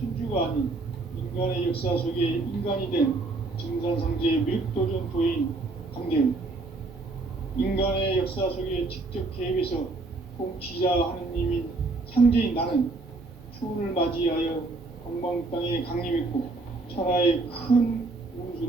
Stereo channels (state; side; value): quieter; left; 3.4 dB